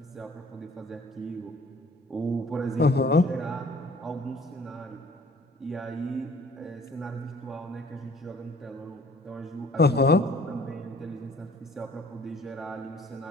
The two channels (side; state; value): both; normal; correlation 0.54